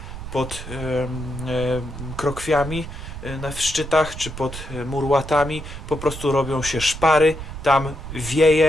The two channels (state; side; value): noise; right; rumble, 10 dB below the sound